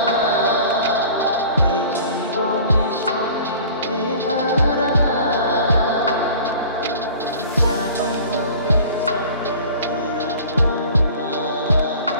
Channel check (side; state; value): both; inverted; correlation -0.45